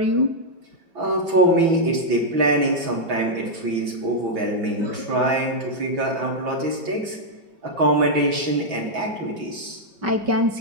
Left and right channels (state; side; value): late; left; 6.0 ms